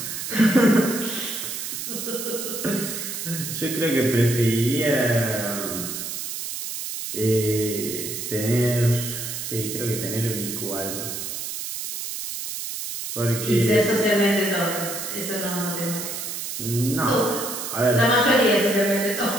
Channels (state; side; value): noise; right; hiss, 6 dB below the sound